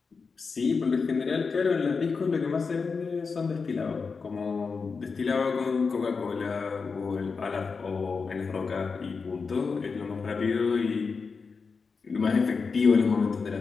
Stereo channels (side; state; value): right; quieter; 4.9 dB